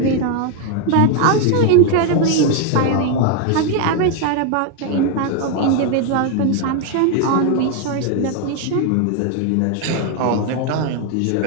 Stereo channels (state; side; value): different; both; correlation 0.01